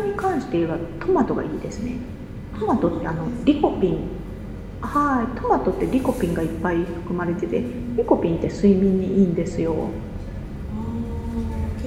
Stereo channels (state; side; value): identical; both; correlation 1.00